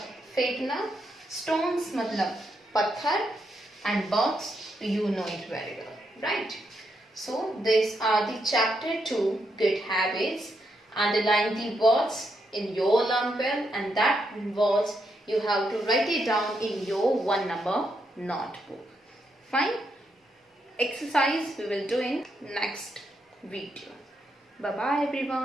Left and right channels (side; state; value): both; normal; correlation 0.80